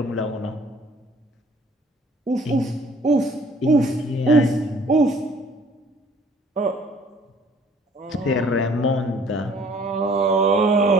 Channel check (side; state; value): both; normal; correlation 0.57